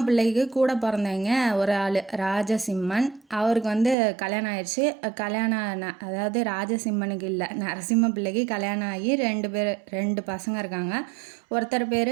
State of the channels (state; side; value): drops out; left; at 4.0 s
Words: பிள்ளைக்கு கூட பிறந்தவங்க ஒரு ஆள் ராஜசிம்மன். அவருக்கு வந்து கல்யாணம் ஆயிடுச்சு. அதாவது ராஜசிம்மனுக்கு இல்லை, நரசிம்ம பிள்ளைக்கு கல்யாணம் ஆகி 2 பசங்க இருக்காங்க. ஒருத்தர் பேர்